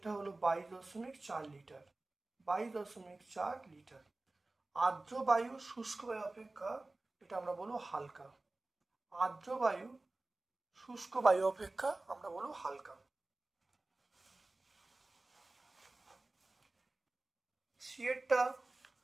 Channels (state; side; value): quieter; left; 3.0 dB